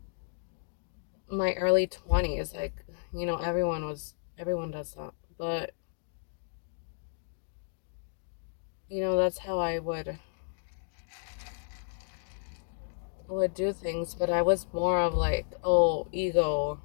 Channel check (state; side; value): silent; right; digital silence